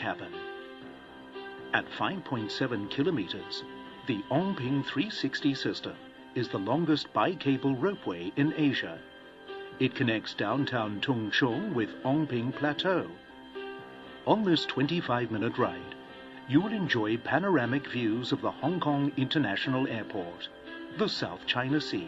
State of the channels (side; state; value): both; identical; correlation 1.00